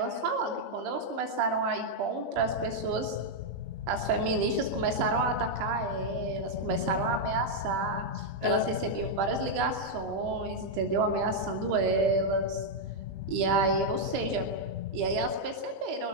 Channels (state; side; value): late; left; 21 ms